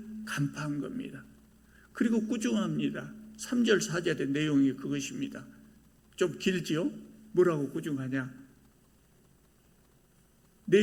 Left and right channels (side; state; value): both; identical; correlation 1.00